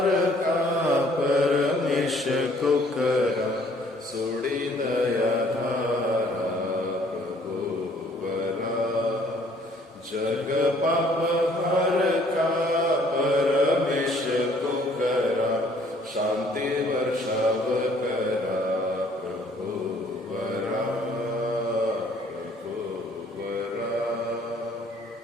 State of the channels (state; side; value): normal; both; correlation 0.60